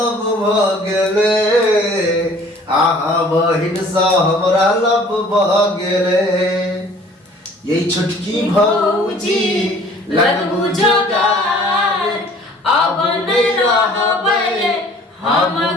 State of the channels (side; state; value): both; normal; correlation 0.52